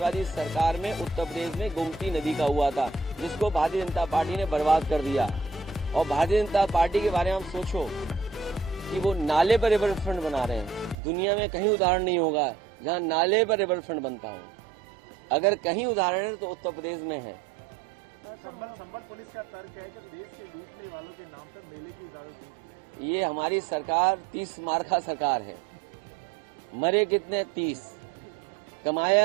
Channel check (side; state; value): left; drops out; at 11.0 s